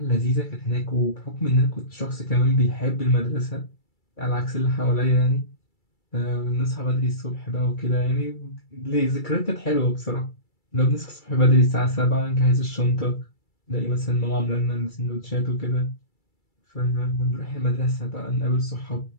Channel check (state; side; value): late; right; 2.3 ms